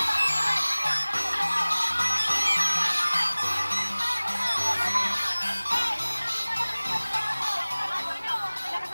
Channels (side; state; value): both; inverted; correlation -1.00